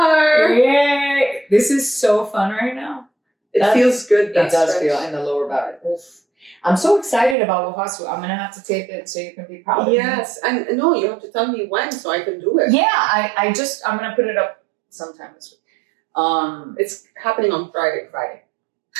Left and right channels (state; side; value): drops out; left; at 7.4 s